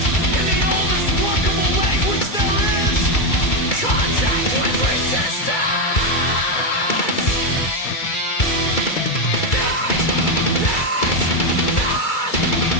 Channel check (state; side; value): late; right; 2.3 ms